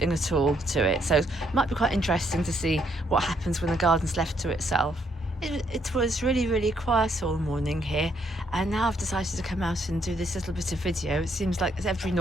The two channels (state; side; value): normal; both; correlation 0.72